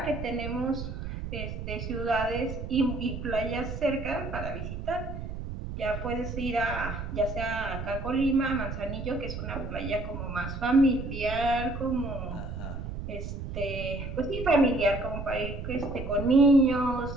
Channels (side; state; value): right; noise; rumble, 7 dB below the sound